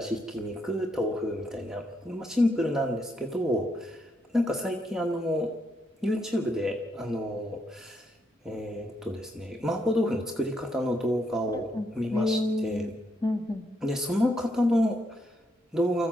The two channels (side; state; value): both; normal; correlation 0.77